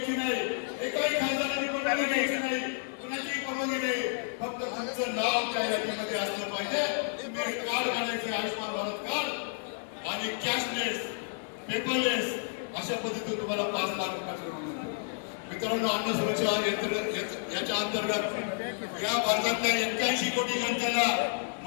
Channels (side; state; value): right; silent; 57 dB below the other